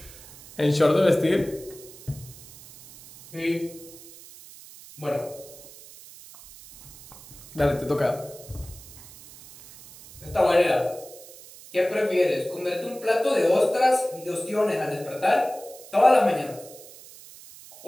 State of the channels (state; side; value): noise; right; hiss, 19 dB below the sound